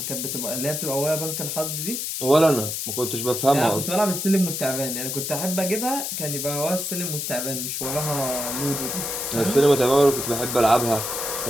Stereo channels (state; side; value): noise; left; hiss, 3 dB below the sound